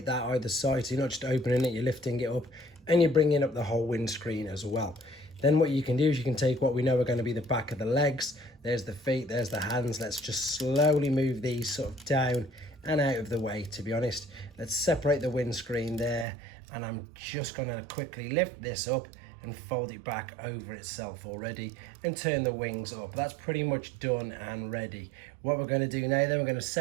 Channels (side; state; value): left; drops out; at 16.2 s